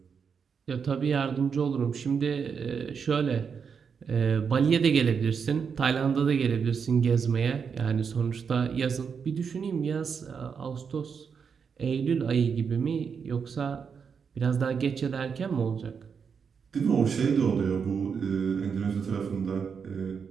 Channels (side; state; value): left; quieter; 6.3 dB